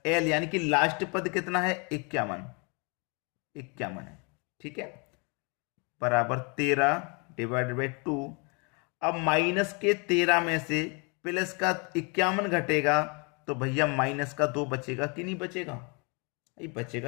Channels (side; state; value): right; quieter; 32.9 dB